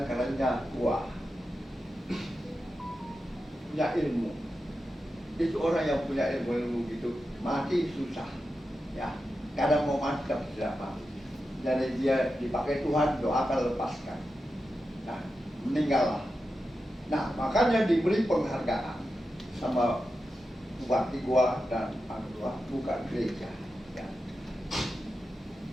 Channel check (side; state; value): both; normal; correlation 0.90